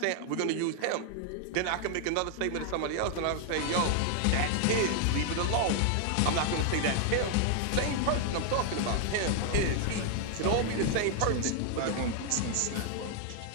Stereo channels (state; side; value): different; both; correlation 0.00